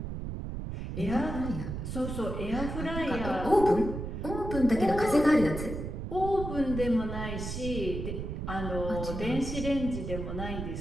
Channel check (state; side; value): noise; right; rumble, 5 dB below the sound